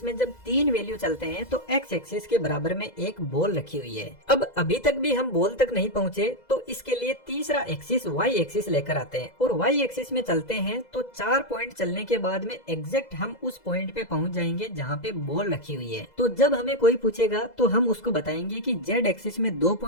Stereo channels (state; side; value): late; right; 2.0 ms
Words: में जब 3 वैल्यू चलते हैं तो एक्स एक्सिस के बराबर में एक बॉल रखी हुई है। अब अभी तक भी हम बॉल तक नहीं पहुँचे तो इसके लिए तीसरा एक्सिस वाई एक्सिस लेकर आते हैं और वाई एक्सिस में चलते हैं तो 4 पॉइंट चलने के बाद में एग्जैक्ट हम उस पॉइंट पे पहुंच जाएंगे जहाँ पे बॉल रखी हुई है। तो जब हमें कोई पूछेगा तो हम उसको बताएंगे कि जेड एक्सिस में 2